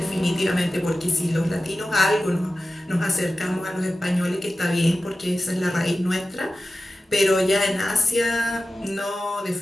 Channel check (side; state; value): both; normal; correlation 0.94